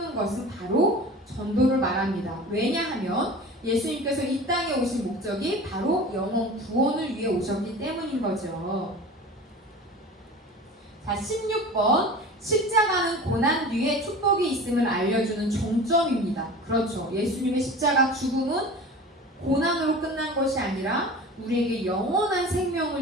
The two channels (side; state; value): both; normal; correlation 0.37